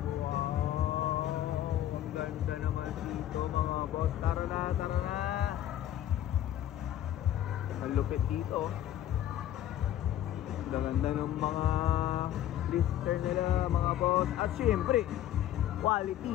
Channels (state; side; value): quieter; right; 12.1 dB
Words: Wow, ang ganda naman dito mga boss. Tara na, tara na. Ang lupit dito. Ang ganda ng mga blister nila mga boss. At syempre,